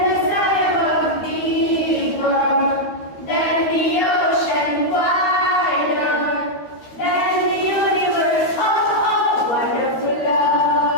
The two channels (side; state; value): right; late; 12 ms